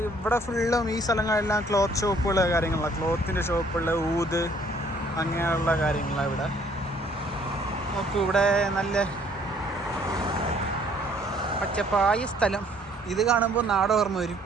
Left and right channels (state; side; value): normal; both; correlation 0.61